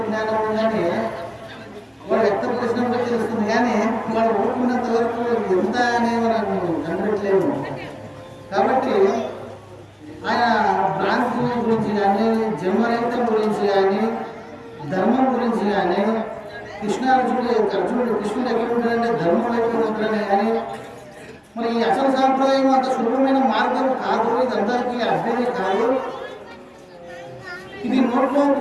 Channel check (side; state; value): both; identical; correlation 1.00